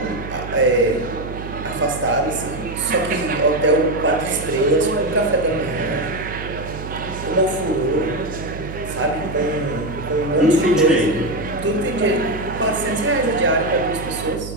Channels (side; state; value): right; noise; hum, 9 dB below the sound